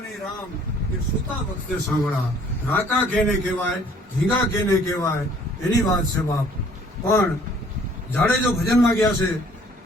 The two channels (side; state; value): both; normal; correlation 0.57